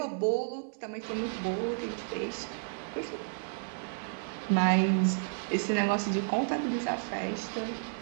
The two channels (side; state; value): left; silent; 57 dB below the other